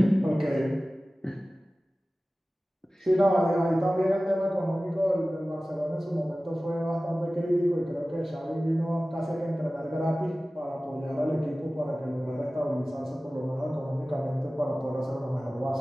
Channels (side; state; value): both; normal; correlation 0.97